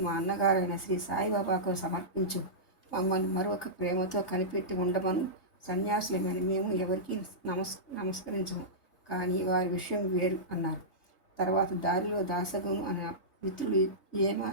మా అన్నగారైన శ్రీ సాయిబాబాకు సమర్పించు, మమ్మల్ని మరొక ప్రేమతో కనిపెట్టి ఉండమను. సన్యాసులమైన మేము ఎవరికి నమస్కరించము, కానీ వారి విషయం వేరు అన్నారు. తర్వాత దారిలో దాసగును అనే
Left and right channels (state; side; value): late; right; 3.3 ms